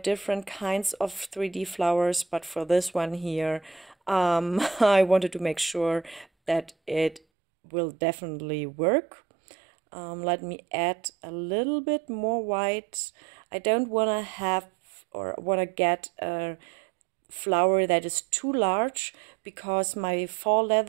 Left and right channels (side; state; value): left; drops out; at 7.2 s